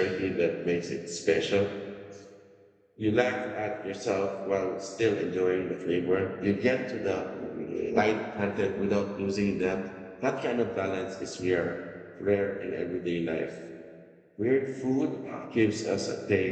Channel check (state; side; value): identical; both; correlation 1.00